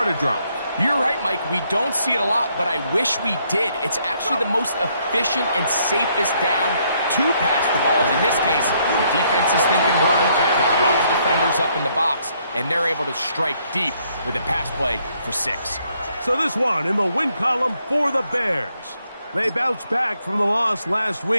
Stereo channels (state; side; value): inverted; both; correlation -0.71